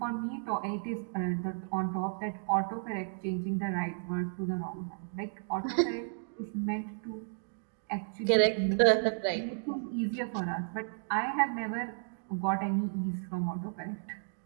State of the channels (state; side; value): silent; left; digital silence